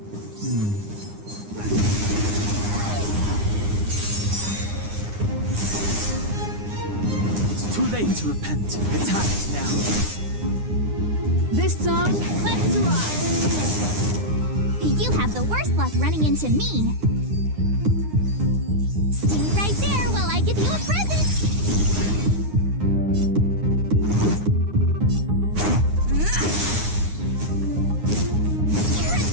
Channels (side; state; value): left; late; 9.8 ms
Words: It's too late to repent. The time is now. This song, let's rock! You have the worst luck running into me. Stay right there while I give you a present. You're